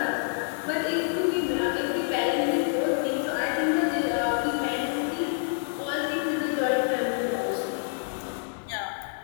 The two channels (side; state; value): right; silent; digital silence